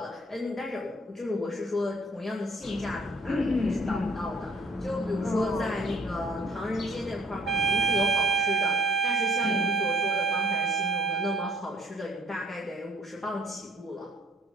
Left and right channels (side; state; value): both; normal; correlation 0.59